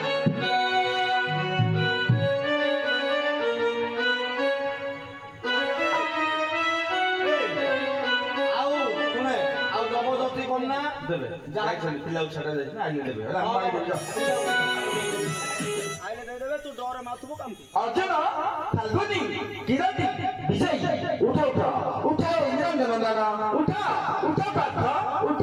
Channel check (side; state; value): both; identical; correlation 1.00